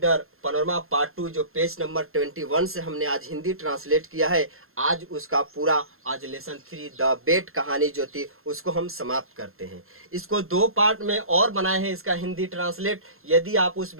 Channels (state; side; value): late; left; 0.62 ms